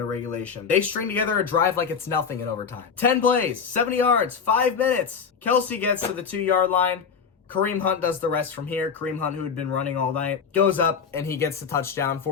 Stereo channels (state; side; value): quieter; right; 6.3 dB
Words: of regulation. They string together a drive like it's nothing in overtime. 10 plays, 70 yards, 5 minutes. Kelsey gets to the 2-yard line. Kareem Hunt does the rest from here. Kareem Hunt, who had been running all night, goes up and he gets the touchdown